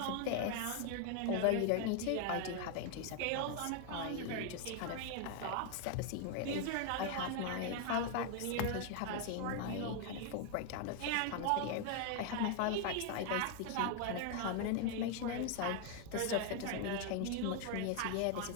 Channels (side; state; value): both; different; correlation 0.01